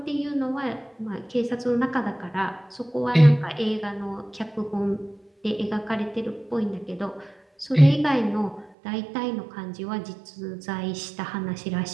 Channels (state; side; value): drops out; left; at 8.7 s